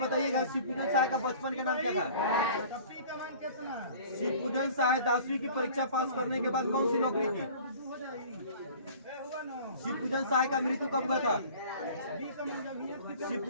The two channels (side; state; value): both; inverted; correlation -0.46